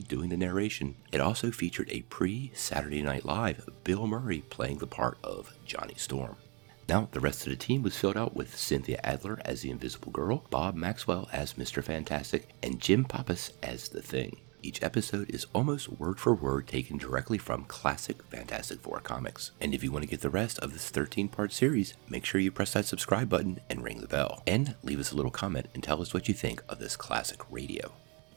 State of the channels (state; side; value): quieter; left; 31.5 dB